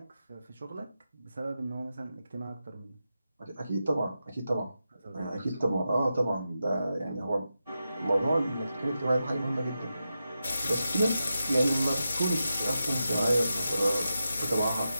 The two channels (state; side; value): inverted; both; correlation -0.89